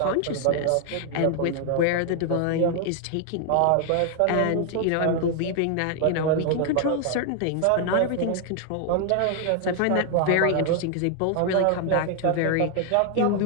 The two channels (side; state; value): both; different; correlation 0.00